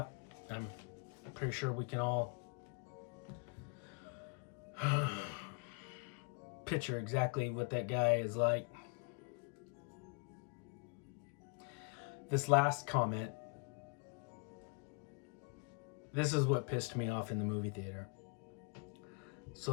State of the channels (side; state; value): right; quieter; 34.6 dB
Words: I'm pretty sure we can all picture exactly what that guy is like. This last comment, this is what pissed me off in the movie theater.